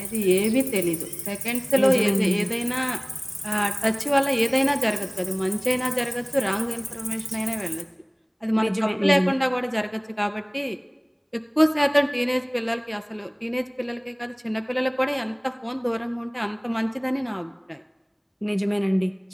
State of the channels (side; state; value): both; identical; correlation 1.00